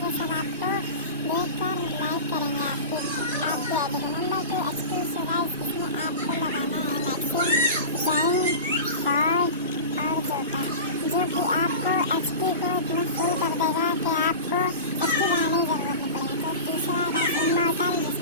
कि सब आपको देखकर लाइक करेंगे आपकी आईडी को। Number 2 HP. सो गाइस इसमें आपको लगाना है मैक्सिम, जैन, फॉल्ट और जोटा, जो कि आपको एचपी को इतना फुल कर देगा कि आपको एचपी बढ़ाने की जरूरत नहीं पड़ेगी। तो तीसरा है इमॉर्टल,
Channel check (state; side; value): inverted; both; correlation -0.31